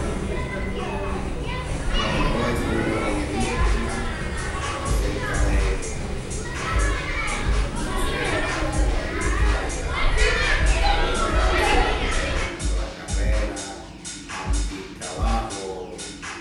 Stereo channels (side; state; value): both; identical; correlation 1.00